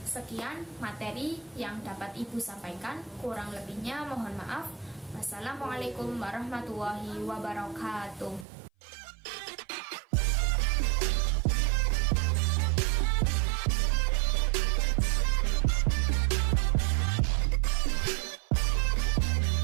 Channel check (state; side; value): drops out; left; at 8.5 s